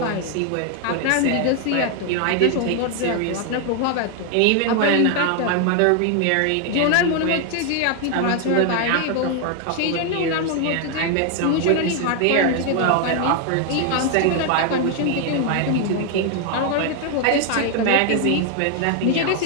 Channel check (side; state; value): both; different; correlation 0.01